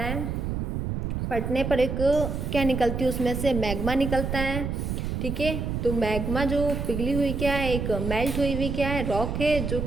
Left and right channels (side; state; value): right; noise; rumble, 2 dB below the sound